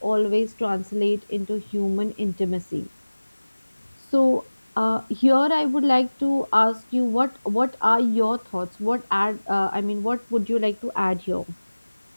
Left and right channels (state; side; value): inverted; both; correlation -1.00